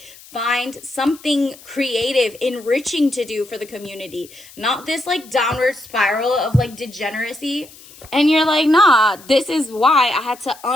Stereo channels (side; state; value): left; noise; hiss, 21 dB below the sound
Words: Find something creative, enriching to do for the community. Not this like downward spiral of like degeneracy. And you're like, nah, this is why I had to